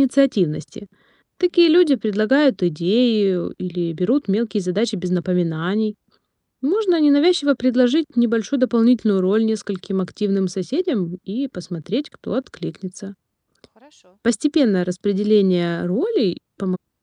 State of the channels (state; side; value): identical; both; correlation 1.00